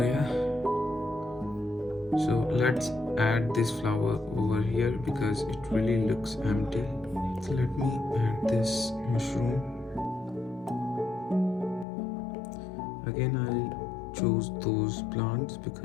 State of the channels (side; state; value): right; drops out; at 11.9 s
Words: so let's add this flower over here because it really looks empty. So let me add this mushroom. Again, I'll choose those plants